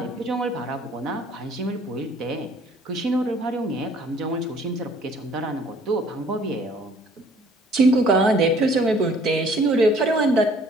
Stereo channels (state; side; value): normal; both; correlation 0.57